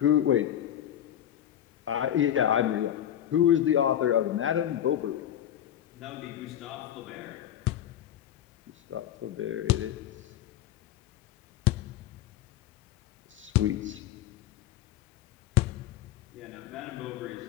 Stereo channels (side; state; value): right; quieter; 11.1 dB